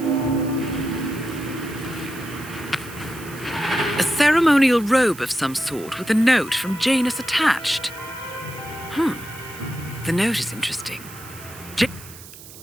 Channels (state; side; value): noise; right; hiss, 17 dB below the sound